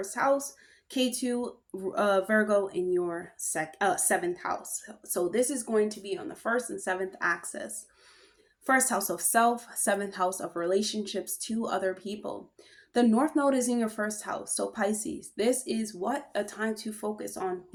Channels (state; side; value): identical; both; correlation 1.00